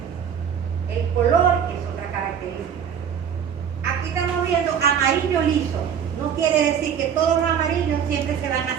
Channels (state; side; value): quieter; left; 8.1 dB